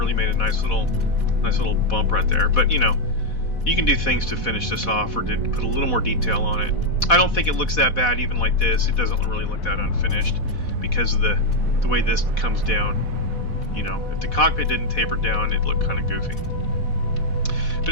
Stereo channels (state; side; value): late; right; 4.1 ms